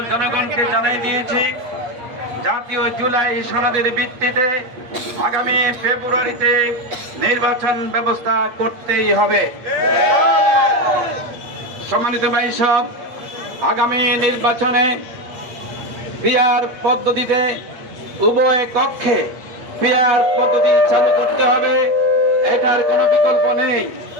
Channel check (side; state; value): left; late; 8.6 ms